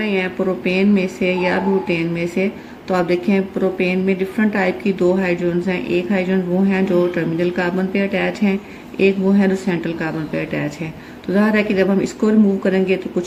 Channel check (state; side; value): identical; both; correlation 1.00